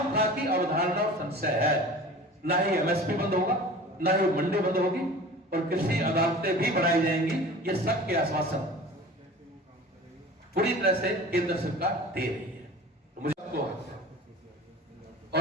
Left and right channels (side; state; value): both; normal; correlation 0.40